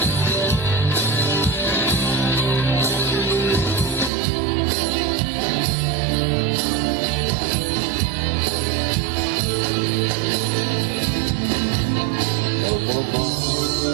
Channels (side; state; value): left; drops out; at 4.1 s